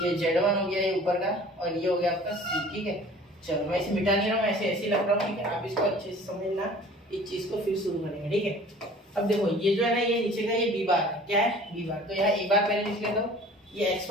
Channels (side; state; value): both; normal; correlation 0.47